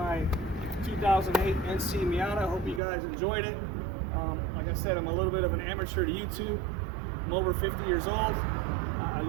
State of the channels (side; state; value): left; drops out; at 2.8 s